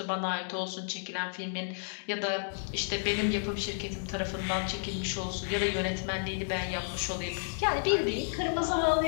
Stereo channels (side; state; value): right; silent; digital silence